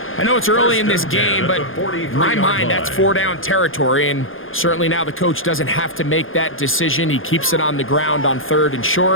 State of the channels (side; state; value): right; late; 0.59 ms